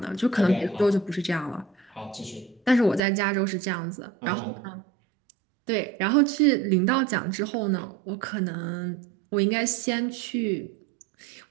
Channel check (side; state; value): left; drops out; at 3.0 s